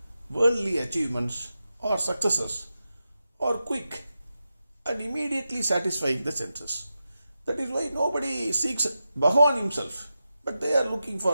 worldly achievements or successes are quick and immediately satisfying the senses. That is why nobody seeks Bhagavan himself. But they are looking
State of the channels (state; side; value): inverted; both; correlation -0.90